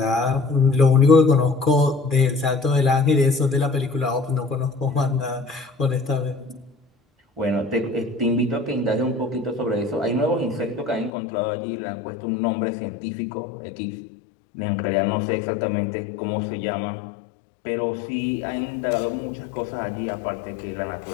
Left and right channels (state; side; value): drops out; right; at 11.1 s